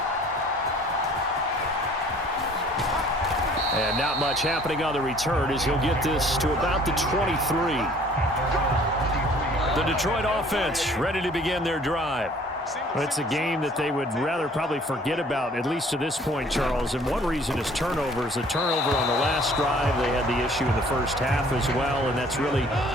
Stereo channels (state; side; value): normal; both; correlation 0.54